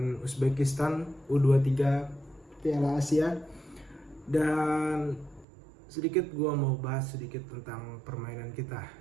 Uzbekistan U23 Piala Asia. Dan sedikit gua mau bahas sedikit tentang permainan kita.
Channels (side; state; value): left; drops out; at 5.5 s